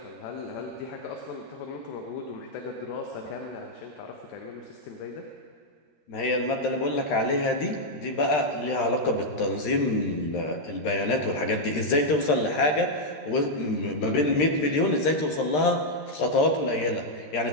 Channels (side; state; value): right; late; 13 ms